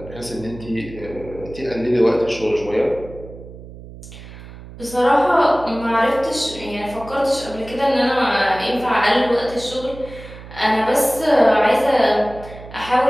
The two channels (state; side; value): noise; right; hum, 16 dB below the sound